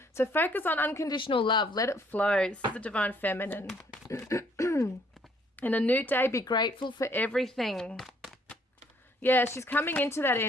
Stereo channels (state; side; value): normal; both; correlation 0.65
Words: So focus on unconditional love. Let it flow. This is the Divine Feminine. And a new day, be grateful for everything. Yeah, she's coming into that